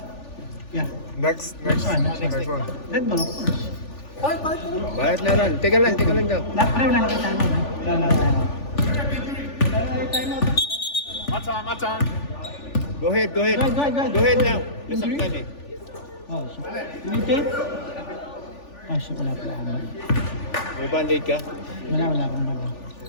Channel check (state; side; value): late; right; 3.4 ms